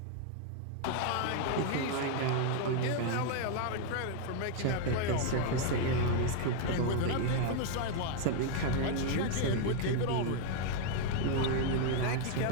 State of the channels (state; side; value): different; both; correlation 0.00